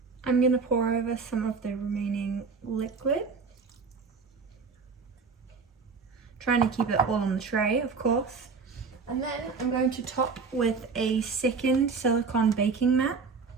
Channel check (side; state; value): left; quieter; 4.9 dB